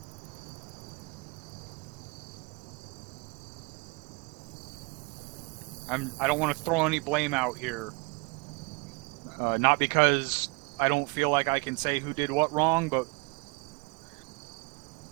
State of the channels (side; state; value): left; quieter; 29.4 dB